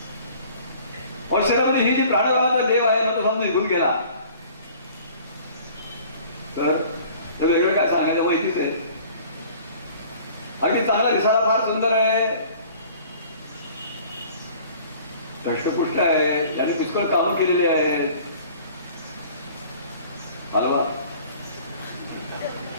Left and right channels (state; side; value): inverted; both; correlation -0.50